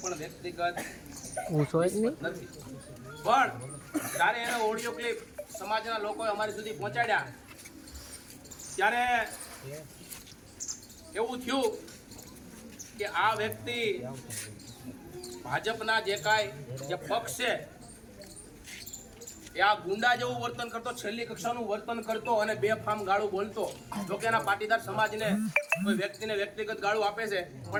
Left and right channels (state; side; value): identical; both; correlation 1.00